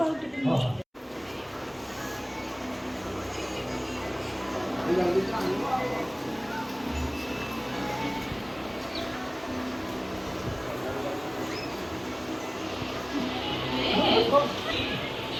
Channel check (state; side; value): identical; both; correlation 1.00